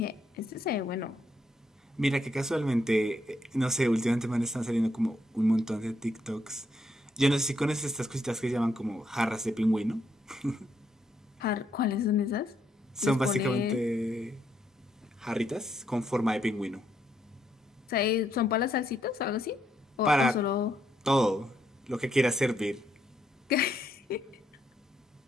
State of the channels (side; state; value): both; normal; correlation 0.76